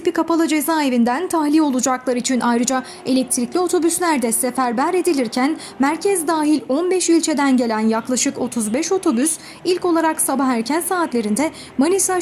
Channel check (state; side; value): identical; both; correlation 1.00